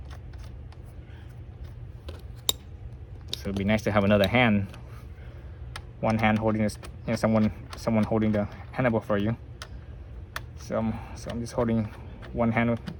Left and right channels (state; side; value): identical; both; correlation 1.00